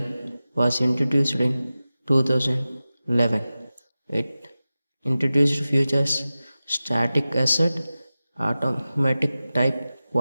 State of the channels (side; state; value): both; inverted; correlation -0.95